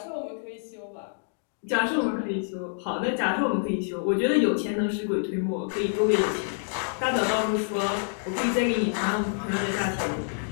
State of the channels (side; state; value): right; silent; digital silence